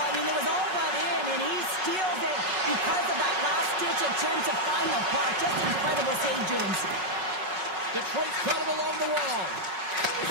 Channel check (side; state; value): left; late; 5.4 ms